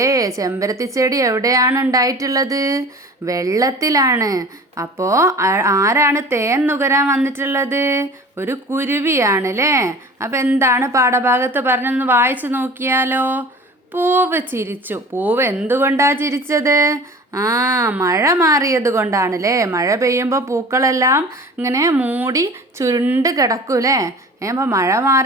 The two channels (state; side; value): normal; both; correlation 0.41